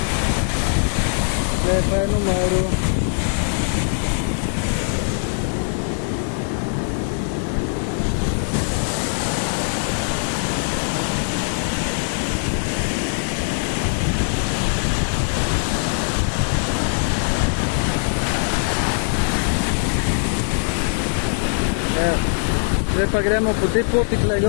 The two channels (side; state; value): right; silent; 65 dB below the other